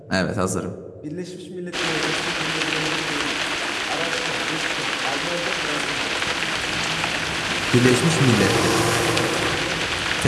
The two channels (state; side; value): identical; both; correlation 1.00